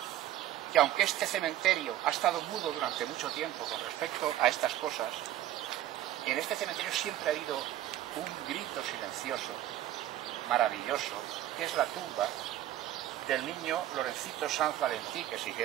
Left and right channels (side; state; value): left; quieter; 12.9 dB